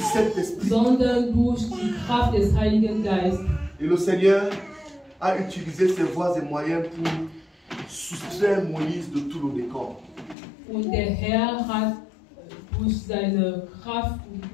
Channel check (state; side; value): drops out; right; at 10.4 s